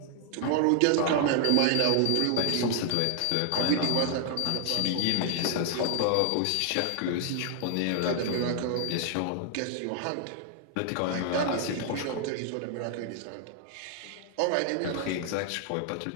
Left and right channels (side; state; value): both; different; correlation 0.00